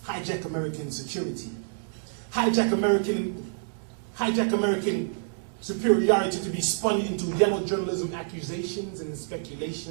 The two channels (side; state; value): left; silent; digital silence